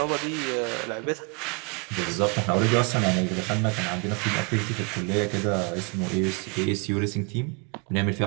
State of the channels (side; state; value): left; quieter; 33.6 dB